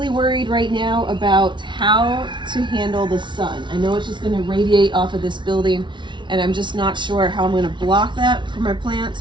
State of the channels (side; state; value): left; late; 0.23 ms